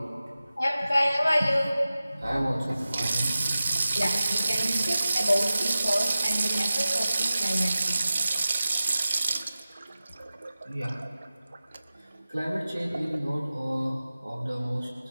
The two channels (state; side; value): inverted; both; correlation -0.95